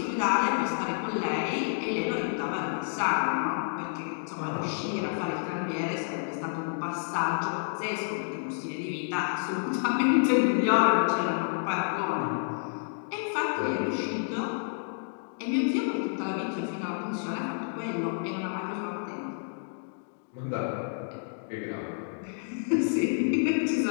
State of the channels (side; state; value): right; silent; digital silence